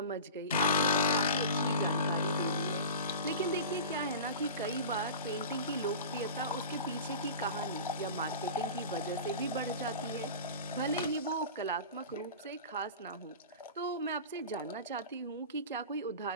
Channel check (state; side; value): inverted; both; correlation -0.34